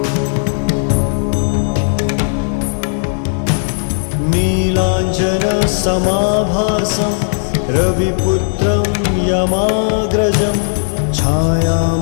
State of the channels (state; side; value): silent; right; digital silence